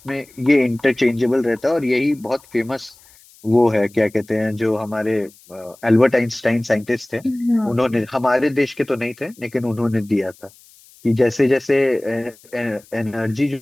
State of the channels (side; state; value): left; noise; hiss, 27 dB below the sound